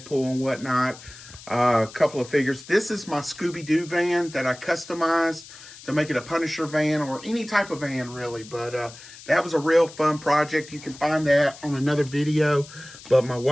and whatnot. A couple of figures. This is my Scooby-Doo van that I customized to make it a Punisher van or any type of van really. But that was a real fun project. You can find that on another video. But my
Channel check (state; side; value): noise; left; hiss, 18 dB below the sound